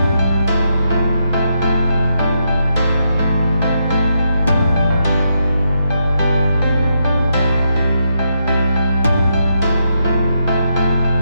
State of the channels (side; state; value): both; inverted; correlation -0.80